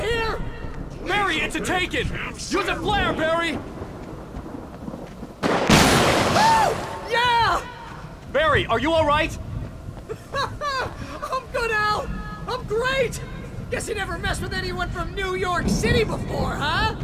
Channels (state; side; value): identical; both; correlation 1.00